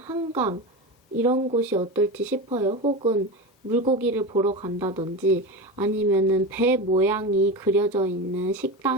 이런 곳이 어떨지 싶어요. 혹은 물고기를 보러 간다든지 아니면은 배 모양이 그려져 있는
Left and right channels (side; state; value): both; normal; correlation 0.22